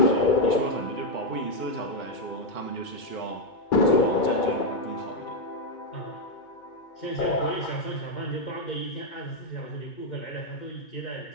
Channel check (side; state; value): right; late; 2.2 ms